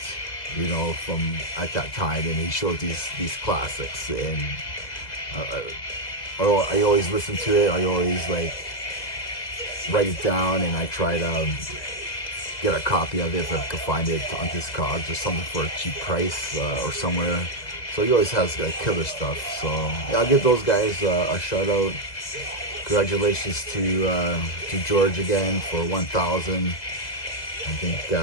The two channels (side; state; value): right; late; 2.0 ms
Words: you know, from at that time, and he shows these classics, and I always listen to it. I always like write it down, and I try to get a copy of it if I can find it on Discogs or something for a cheap price or somewhere. So he always has like killer stuff. So yeah, I'll give those guys a shout out. Congratulations to George again for 1,000. I think,